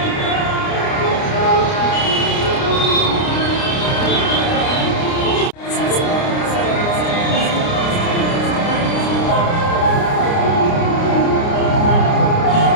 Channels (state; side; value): late; right; 29 ms